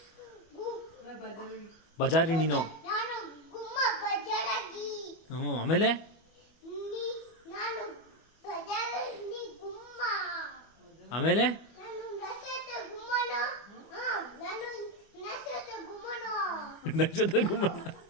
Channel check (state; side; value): late; right; 25 ms